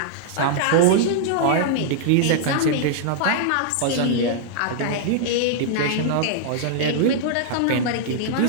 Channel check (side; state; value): both; different; correlation -0.01